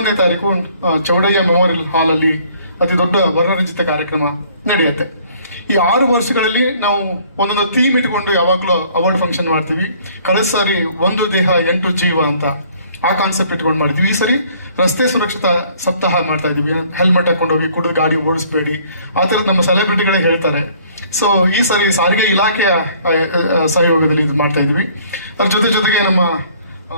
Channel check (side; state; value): both; inverted; correlation -0.58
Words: ತಾರೀಕು ಚೌಡಯ್ಯ ಮೆಮೋರಿಯಲ್ ಹಾಲ್ ಅಲ್ಲಿ ಅತಿ ದೊಡ್ಡ ವರ್ಣರಂಜಿತ ಕಾರ್ಯಕ್ರಮ ನಡೆಯುತ್ತೆ. ಈ 6 ವರ್ಷಗಳಲ್ಲಿ ನಾವು ಒಂದೊಂದು ಥೀಮ್ ಇಟ್ಕೊಂಡು ಯಾವಾಗಲೂ ಅವಾರ್ಡ್ ಫಂಕ್ಷನ್ ಮಾಡ್ತೀವಿ. ಕಳೆದ ಸಾರಿ ಒಂದು ದೇಹ 8 ಜೀವ ಅಂತ ಆ ಕಾನ್ಸೆಪ್ಟ್ ಇಟ್ಕೊಂಡು ಮಾಡ್ತೀವಿ. ಈ ಸರಿ ರಸ್ತೆ ಸುರಕ್ಷತಾ ಸಪ್ತಾಹ ಮಾಡ್ತಾ ಇದೀವಿ. ಹೆಲ್ಮೆಟ್ ಹಾಕೊಂಡೋಗಿ ಕುಡಿದು ಗಾಡಿ ಓಡಿಸ್ಬೇಡಿ, ಆ ಥರದ್ದು ನಮ್ಮ ಸೆಲೆಬ್ರಿಟಿಗಳೇ ಹೇಳ್ತಾರೆ. ಸೊ ಈ ಸಾರಿ ಸಾರಿಗೆ ಇಲಾಖೆಯ ಸಹಯೋಗದಲ್ಲಿ ಇದು ಮಾಡ್ತಾ ಇದೀವಿ. ಅದ್ರ ಜೊತೆಗೆ